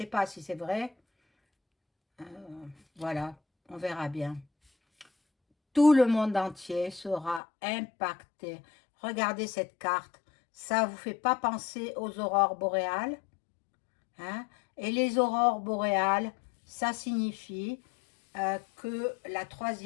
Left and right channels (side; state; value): right; drops out; at 7.4 s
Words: pas si c'est vrai. Voilà, on verra bien. Tout le monde entier sera impacté. Regardez cette carte. Ça ne vous fait pas penser aux aurores boréales, hein? Et les aurores boréales, ça signifie que la